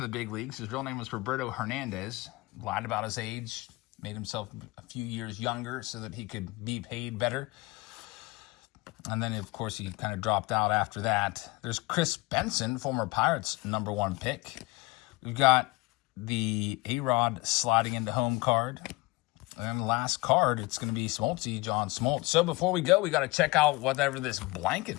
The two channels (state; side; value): quieter; right; 22.6 dB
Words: the big leagues. His real name was Roberto Hernandez. Lied about his age, made himself a few years younger so that he could be paid better. And then, of course, he kind of dropped out after that. There's Chris Benson, former Pirates #1 pick. We've got the A-Rod sliding into home card. And the last card, it's going to be Smoltzy, John Smoltz. So before we go, we got to check out whatever this blanket